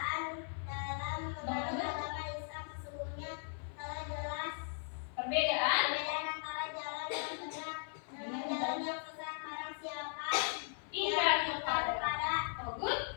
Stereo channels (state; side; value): silent; right; 52 dB below the other